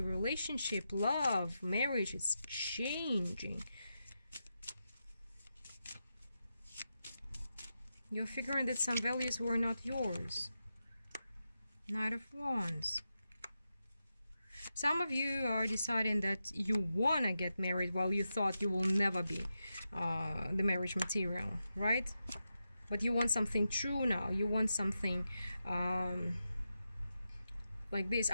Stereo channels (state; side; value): inverted; both; correlation -0.88